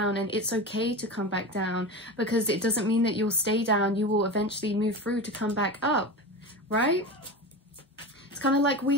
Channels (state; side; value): normal; both; correlation 0.26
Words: and it's okay to come back down, because it doesn't mean that you'll stay down. You will eventually move through to come back up, right? It's kind of like